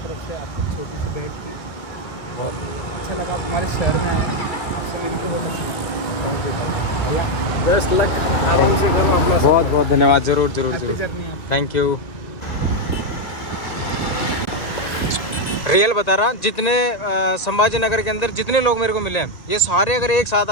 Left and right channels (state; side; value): late; right; 1.9 ms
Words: तरफ से आपकी छोटी सी भेंट थी, बहुत अच्छा लगा। आप हमारे शहर में आए, आपसे मिलकर बहुत अच्छा। थैंक यू भैया, बेस्ट लक, आराम से करो अपना। बहुत बहुत धन्यवाद, ज़रूर थैंक यू। रियल बता रहा, जितने संभाजी नगर के अंदर जितने लोग मेरे को मिले हैं, ये सारे अगर एक साथ